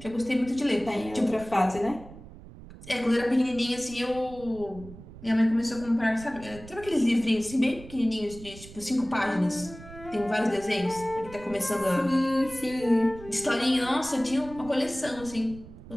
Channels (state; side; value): noise; right; rumble, 17 dB below the sound